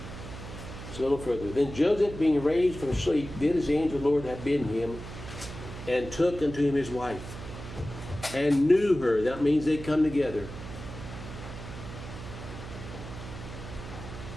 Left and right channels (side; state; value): right; noise; hum, 11 dB below the sound